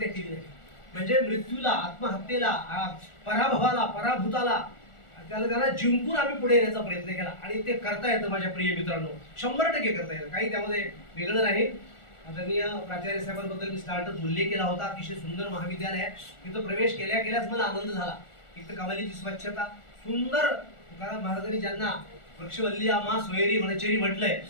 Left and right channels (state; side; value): late; right; 1.4 ms